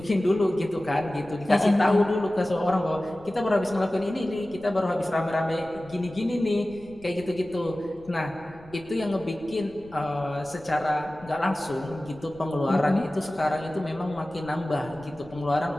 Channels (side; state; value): left; noise; rumble, 23 dB below the sound